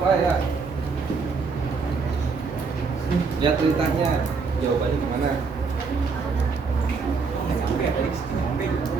Pak ya. Lihat ceritanya, jawabannya gimana?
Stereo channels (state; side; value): quieter; left; 4.8 dB